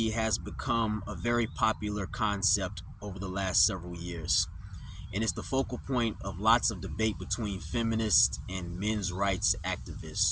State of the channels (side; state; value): both; identical; correlation 1.00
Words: has become a very popular concept over the last several years, and it's the focal point of lots of debate between feminists and men's rights